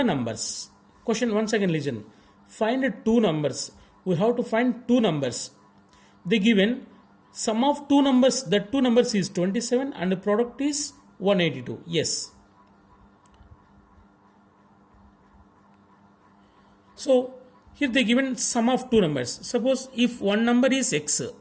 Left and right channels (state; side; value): identical; both; correlation 1.00